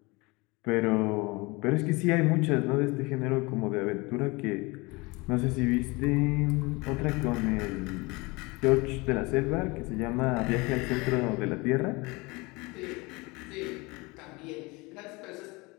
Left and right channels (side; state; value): right; quieter; 25.1 dB